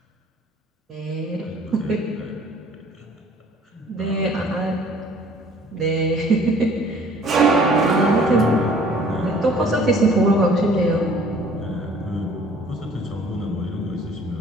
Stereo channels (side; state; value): both; normal; correlation 0.54